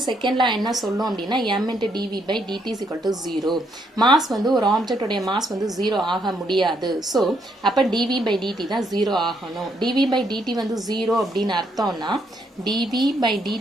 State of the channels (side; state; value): both; normal; correlation 0.74